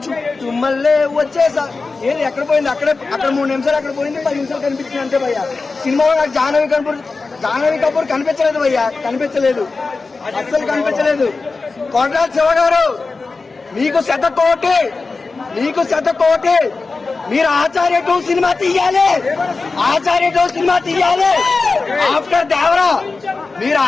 మళ్ళీ వచ్చేసా ఏది ఎక్కడ పోయింది, అక్కడ 3 నిమిషాలు అక్కడ పోయింది, 10 నిమిషాలు కనిపించింది అంతే భయ్యా. సినిమాలో నాకు జాహ్నవి కపూర్ కనిపించలేదు భయ్యా, అస్సలు కనిపించలేదు. కొట్టాల శివ గారు మీకు శతకోటి, మీరు ఆచార్య 2 సినిమా తీయాలి, ఆఫ్టర్ దేవరా మీరు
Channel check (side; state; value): right; quieter; 4.0 dB